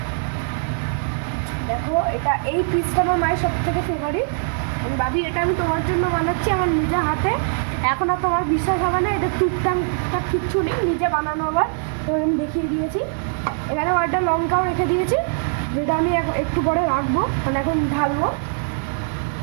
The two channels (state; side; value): silent; left; 64 dB below the other